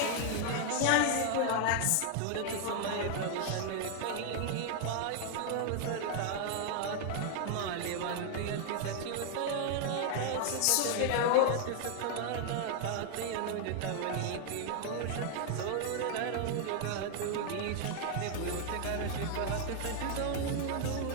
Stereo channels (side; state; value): both; different; correlation 0.00